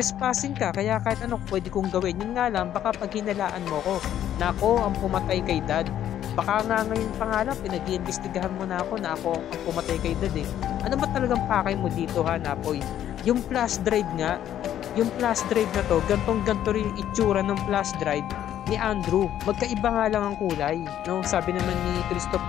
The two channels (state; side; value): quieter; right; 11.1 dB